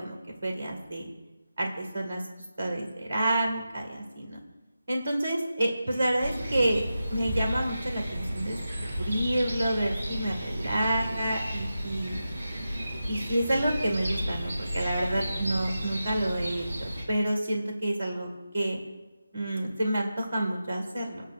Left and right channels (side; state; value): both; inverted; correlation -0.91